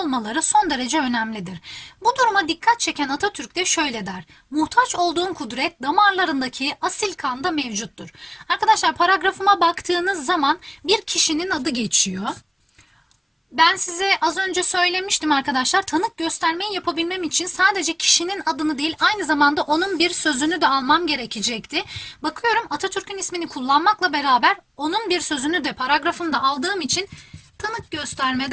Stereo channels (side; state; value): both; identical; correlation 1.00